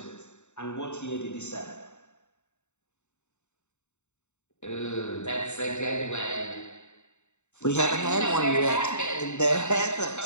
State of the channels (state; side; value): late; right; 0.83 ms